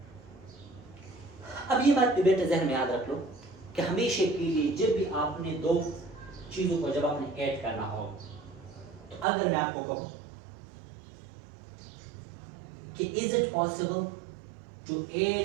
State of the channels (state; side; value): drops out; left; at 9.2 s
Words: अब ये बात बेटा जहन में याद रख लो कि हमेशा के लिए जब भी आपने दो चीजों को जब आपने ऐड करना हो, तो अगर मैं आपको कहूं कि is it possible to